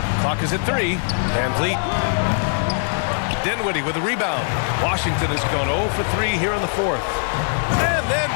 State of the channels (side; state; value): right; silent; 58 dB below the other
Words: Clock is at 3. Van Vliet. Dinwiddie with a rebound. Washington has gone 0 for 3 here in the fourth. And then